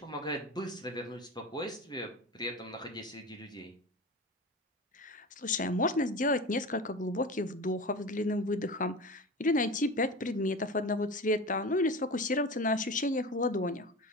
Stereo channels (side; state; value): both; normal; correlation 0.30